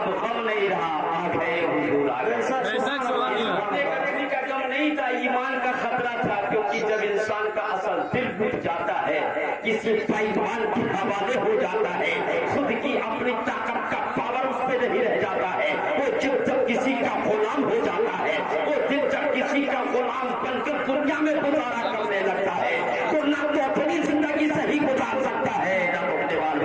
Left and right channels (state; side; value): identical; both; correlation 1.00